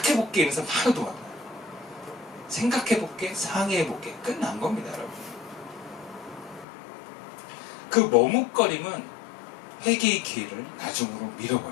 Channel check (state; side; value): drops out; right; at 6.7 s